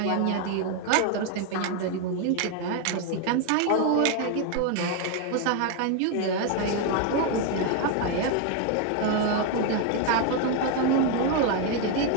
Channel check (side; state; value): both; different; correlation 0.01